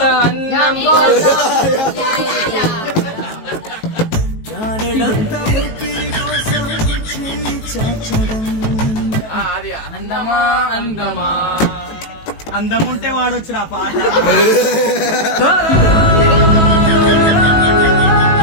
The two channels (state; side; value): late; right; 18 ms